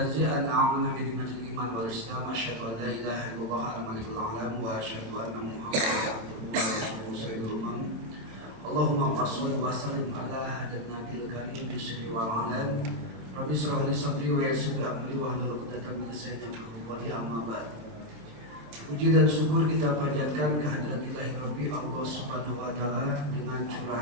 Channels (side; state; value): left; late; 27 ms